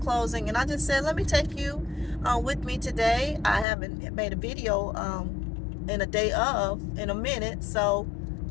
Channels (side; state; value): right; drops out; at 3.7 s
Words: And I just said let me take you with me today. I haven't made a video in a day in a minute, so